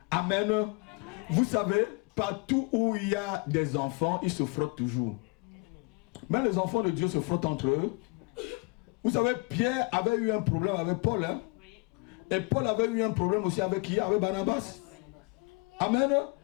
Amen. Vous savez, partout où il y a des enfants, ils se frottent toujours. Mais les enfants de Dieu se frottent entre eux. Vous savez, Pierre avait eu un problème avec Paul. Hein? Et Paul avait eu un problème aussi avec qui? Avec Barnabas. Amen.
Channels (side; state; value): right; quieter; 28.7 dB